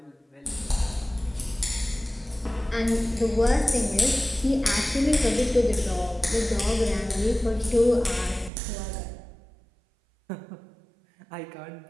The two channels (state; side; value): drops out; left; at 8.5 s